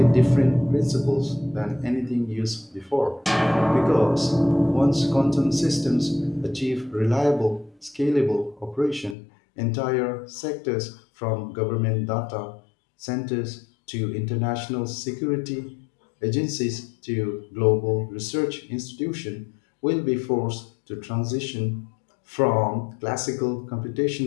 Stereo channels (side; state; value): right; drops out; at 9.2 s